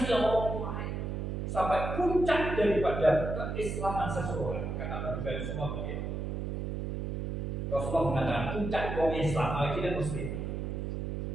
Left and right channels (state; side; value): noise; right; hum, 3 dB below the sound